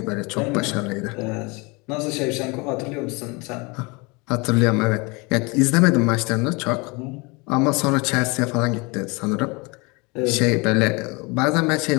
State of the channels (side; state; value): right; quieter; 27.8 dB